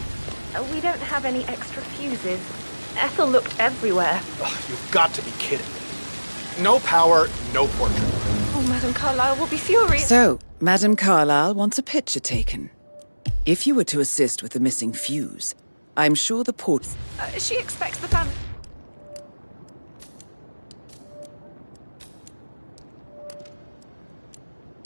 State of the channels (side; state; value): both; inverted; correlation -1.00